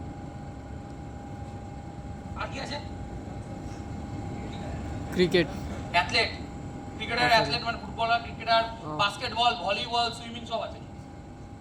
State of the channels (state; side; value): identical; both; correlation 1.00